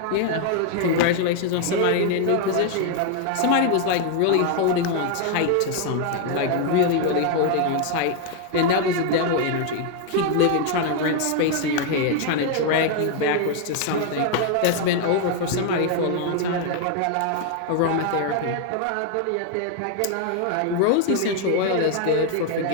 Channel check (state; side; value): different; both; correlation 0.00